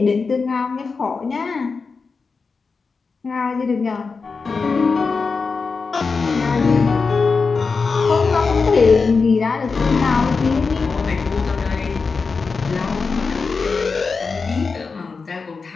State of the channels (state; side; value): quieter; right; 4.7 dB